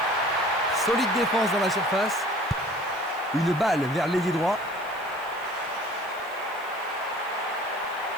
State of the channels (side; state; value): left; noise; hiss, 24 dB below the sound